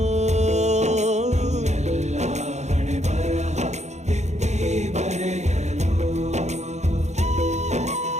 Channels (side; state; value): left; late; 0.33 ms